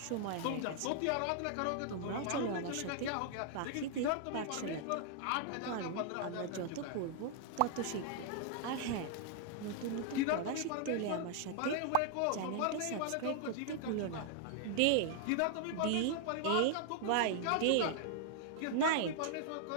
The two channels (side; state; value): both; different; correlation 0.00